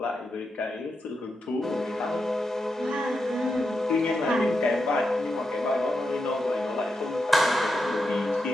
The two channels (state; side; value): normal; both; correlation 0.86